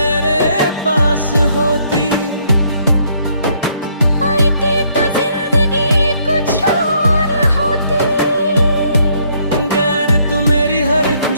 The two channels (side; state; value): both; inverted; correlation -0.69